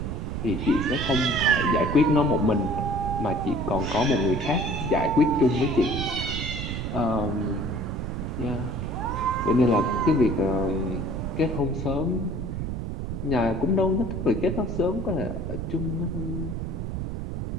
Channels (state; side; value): noise; right; rumble, 4 dB below the sound